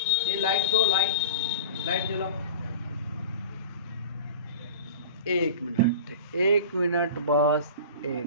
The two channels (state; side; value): inverted; both; correlation -0.35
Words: ये लाइट दो, लाइट जलाओ। एक मिनट बस,